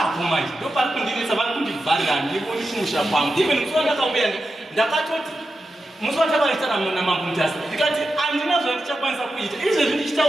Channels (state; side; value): normal; both; correlation 0.90